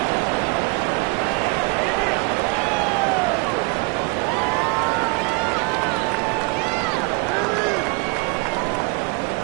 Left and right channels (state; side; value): quieter; left; 29.4 dB